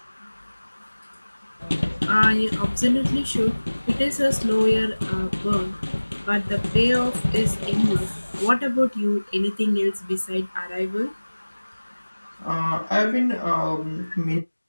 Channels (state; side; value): inverted; both; correlation -1.00